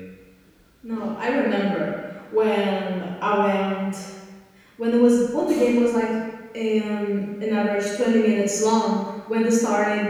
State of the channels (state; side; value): identical; both; correlation 1.00